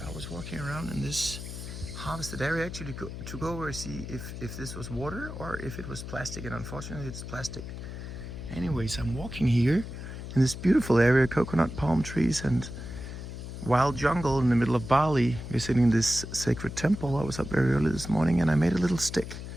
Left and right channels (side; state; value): left; noise; hum, 9 dB below the sound